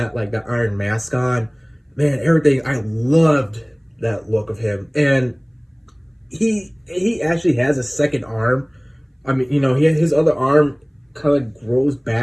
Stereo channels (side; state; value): both; identical; correlation 1.00